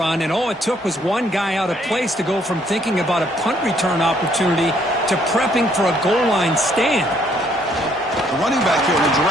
and all it took was one guy out of place to go from thinking about a punt return opportunity to prepping for a goal line stand. The running back here in a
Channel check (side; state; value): both; normal; correlation 0.67